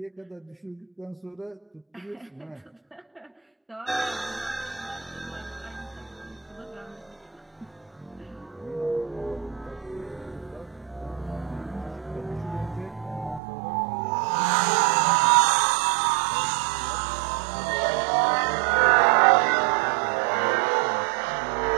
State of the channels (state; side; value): drops out; left; at 13.4 s